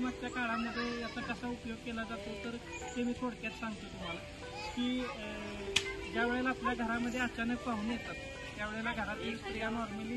काळामध्ये याचा कसा उपयोग केला जातो तर ते मी थोडक्यात सांगतो तुम्हाला की ज्या वेळेला आपल्या घरामध्ये अचानक पाहुणे येतात त्यावेळेला घरातील स्त्रिया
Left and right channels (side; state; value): both; identical; correlation 1.00